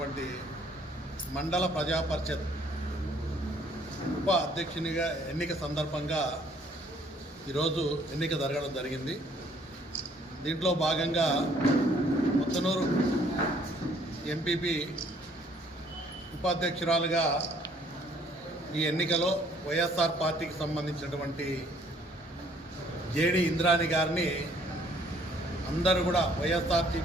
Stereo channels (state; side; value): normal; both; correlation 0.62